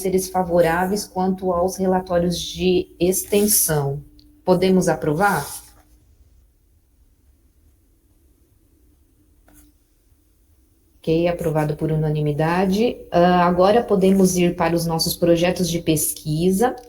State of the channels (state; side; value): identical; both; correlation 1.00